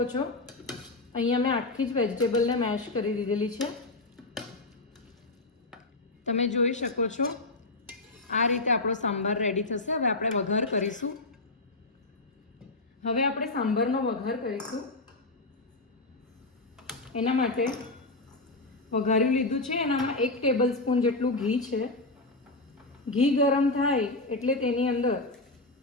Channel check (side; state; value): right; quieter; 3.0 dB